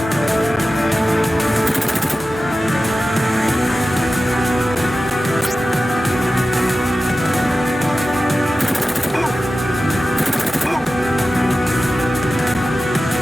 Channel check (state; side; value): normal; both; correlation 0.94